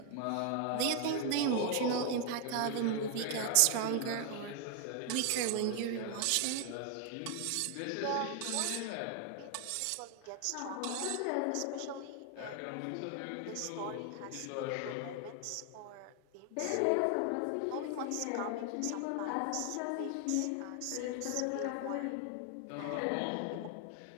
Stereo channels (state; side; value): different; both; correlation 0.00